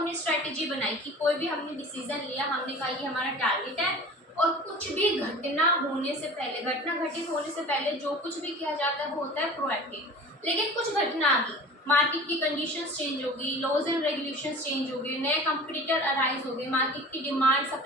स्ट्रैटेजी बनाई कि कोई भी हमने डिसीजन लिया, हमने कहा ये हमारा टारगेट है, और कुछ भी घटना होने से पहले, घटना घटित होने से पहले जो कुछ भी किया जाता है वो होता है प्रोएक्टिव। लेकिन कुछ घटना आ गई, मार्केट की कंडीशंस चेंज हो गई, लॉज एंड रेगुलेशंस चेंज हो गए, नए कंपटीटर अराइज हो गए, मार्केट की डिमांड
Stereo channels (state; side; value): normal; both; correlation 0.40